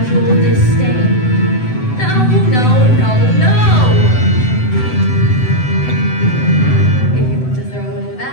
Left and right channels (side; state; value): right; late; 7.9 ms